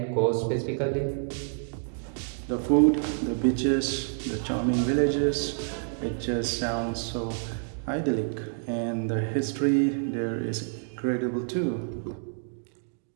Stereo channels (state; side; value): silent; left; digital silence